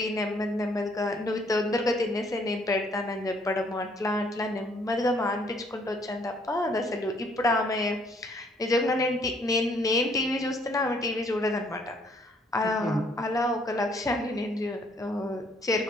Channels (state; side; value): normal; both; correlation 0.65